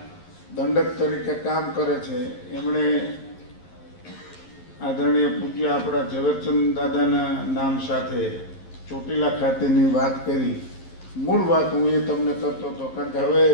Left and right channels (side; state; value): right; late; 11 ms